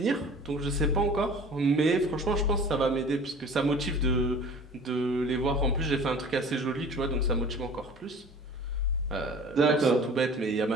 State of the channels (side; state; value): both; normal; correlation 0.44